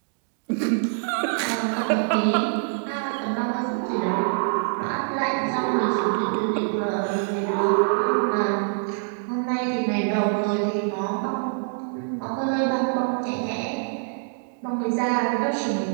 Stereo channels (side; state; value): left; silent; digital silence